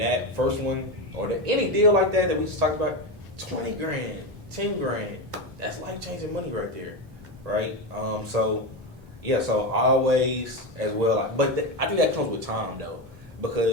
first one, or any deal like that we just talked about, 20 grand, 10 grand, that's life-changing money right there, right? So always as well, but I think that comes with time though,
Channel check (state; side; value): normal; both; correlation 0.15